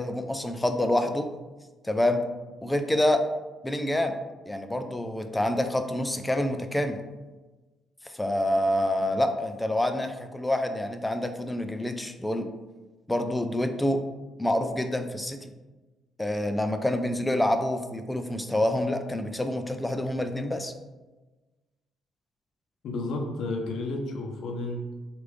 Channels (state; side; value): normal; both; correlation 0.89